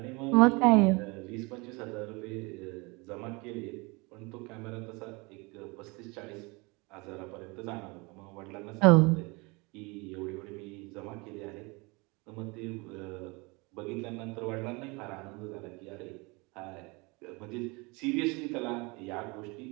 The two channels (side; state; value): left; quieter; 27.0 dB